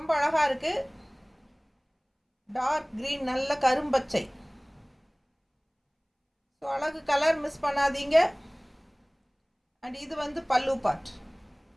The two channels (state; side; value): identical; both; correlation 1.00